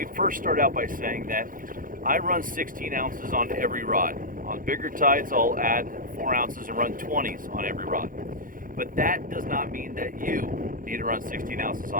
first start out by saying that I run 16 ounces on every rod. On bigger tides, I'll add 4 ounces and run 20s on every rod. But that does not mean that you need to run 16 ounces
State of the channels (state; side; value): late; left; 0.40 ms